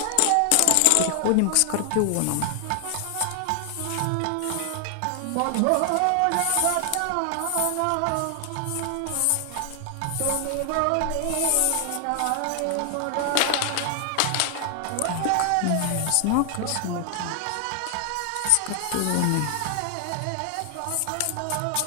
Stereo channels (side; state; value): both; different; correlation 0.00